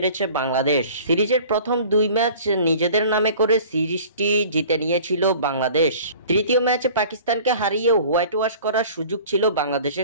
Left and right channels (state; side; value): inverted; both; correlation -0.45